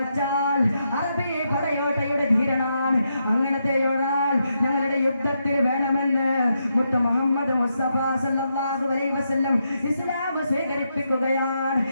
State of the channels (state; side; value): inverted; both; correlation -0.81